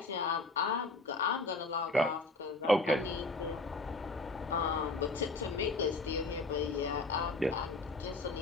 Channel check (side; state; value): right; quieter; 3.2 dB